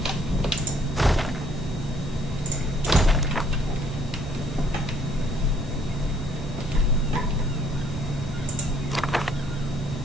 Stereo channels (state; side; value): normal; both; correlation 0.64